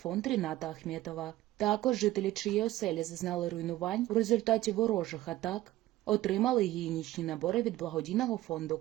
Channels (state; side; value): quieter; left; 15.8 dB